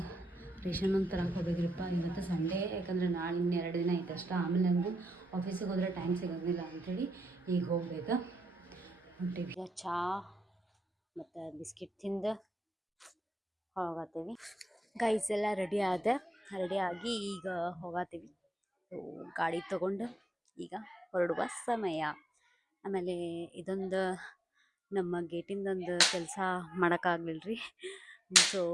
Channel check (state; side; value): normal; both; correlation 0.85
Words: ರೇಷನ್ ಒಂದು ತರಕ್ಕೆ ಹೋಗ್ಬೇಕ್ರಿಪ್ಪ. ಇವತ್ತು ಸಂಡೇ, ಯಾಕಂದರೆ ನಾಳೆ ಇನ್ನು 2 ದಿನ ಐತೆ ಅಷ್ಟೇ. ಆಮೇಲೆ ನನಗೂ ಆಫೀಸಿಗೆ ಹೋದ್ರೆ ಟೈಮ್ ಸಿಗೋಂಗಿಲ್ಲ ಅಂಥೇಳಿ ಈಗ ಹೋಗ್ಬೇಕು. ಹೊಂಟೀವಿ. ಚಹಾ ಮತ್ತು ಬಿಸ್ಕಿಟ್ ತಿಂದು ಹೋಗತ್ತೀವಿ. ಗೈಸ್ ಎಲ್ಲ ರೆಡಿಯಾಗಿ ಈಗ ಹೋಗತ್ತೀವಿ. ಗಾಡಿ ತೊಗೊಂಡು ಈಗ ಹೊರಡುವ ಸಮಯ. ಆಮೇಲೆ ಇದೊಂದು ನಮ್ಮ ಗೇಟಿಂದೊಂದು ಕೆಲಸ ಮಾಡೋಕ್ಕಾಗಲಿಲ್ಲ ರೀ. ಸೊ